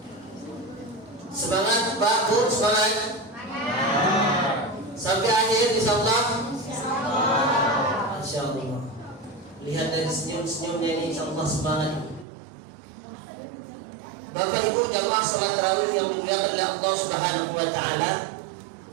Semangat Pak Bu, semangat. Sampai akhir insyaallah. Insyaallah. Lihat dari senyum-senyumnya ini insyaallah semangat. Bapak Ibu jamaah salat tarawih yang dimuliakan oleh Allah Subhanahu wa taala,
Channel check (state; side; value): drops out; left; at 12.2 s